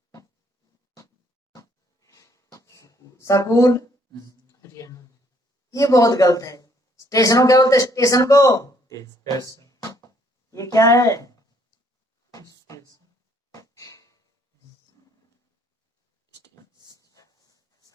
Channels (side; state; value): both; normal; correlation 0.66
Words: स्कूल, ये बहुत गलत है। स्टेशन को क्या बोलते हैं, स्टेशन को, ये क्या है,